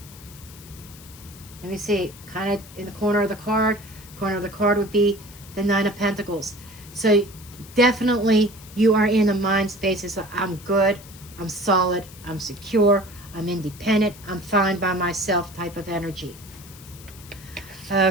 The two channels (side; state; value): left; noise; hiss, 19 dB below the sound